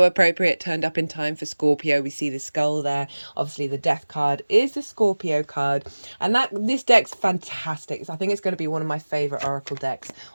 appropriate, turned up in time for Scorpio. We see the skull there. Obviously the death card is the Scorpio card, and this deck's fantastic. So I think it's going to be one of my favorite Oracle decks,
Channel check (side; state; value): both; inverted; correlation -1.00